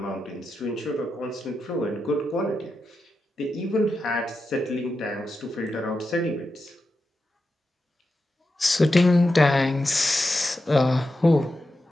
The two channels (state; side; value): normal; both; correlation 0.89